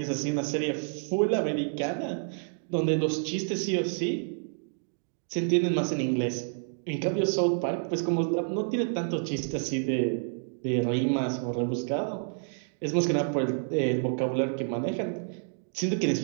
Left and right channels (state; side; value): silent; left; digital silence